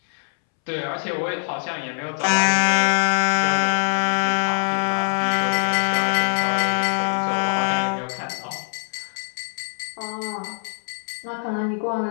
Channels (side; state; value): right; silent; 63 dB below the other